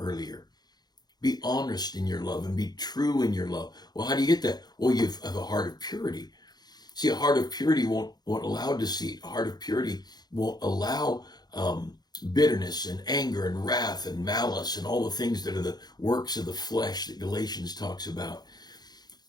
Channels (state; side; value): late; right; 0.20 ms